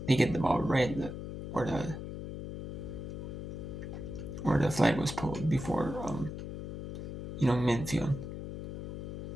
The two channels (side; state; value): left; noise; hum, 7 dB below the sound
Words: get the ball right where the flag was pulled before midfield.